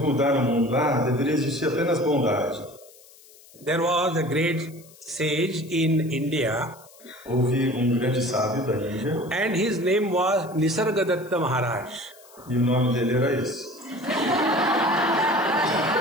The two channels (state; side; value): noise; left; hiss, 24 dB below the sound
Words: o mundo. Deveria existir apenas bondade. There was a great sage in India. Houve grande sábio da Índia. And his name was Nisargadatta Maharaj. E o nome dele era esse.